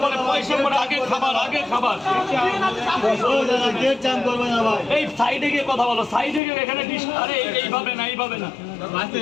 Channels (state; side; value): drops out; right; at 6.4 s